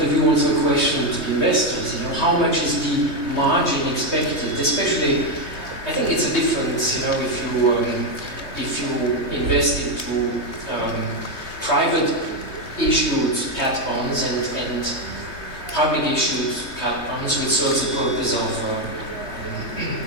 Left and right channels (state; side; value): late; right; 3.2 ms